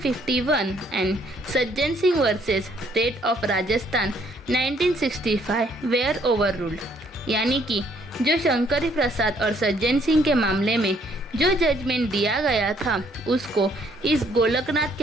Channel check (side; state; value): both; normal; correlation 0.66